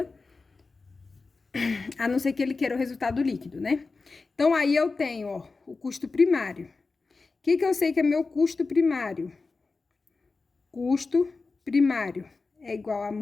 a não ser que ele queira o resultado líquido, né? Então, aí eu tenho, ó, o custo primário. O que eu sei que é meu custo primário? Custo primário é igual a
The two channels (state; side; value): quieter; right; 4.0 dB